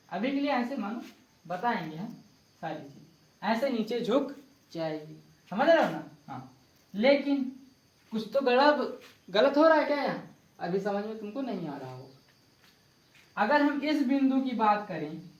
अभी के लिए ऐसे मानो, बताएंगे हम सारी चीज, ऐसे नीचे झुक जाएगी, समझ रहे हो ना। हाँ, लेकिन कुछ तो गलत हो रहा है क्या यहाँ, अभी समझ में तुमको नहीं आ रहा हो। अगर हम इस बिंदु की बात करें,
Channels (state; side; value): identical; both; correlation 1.00